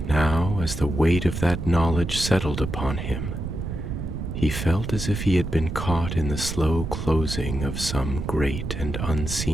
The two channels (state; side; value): noise; right; rumble, 5 dB below the sound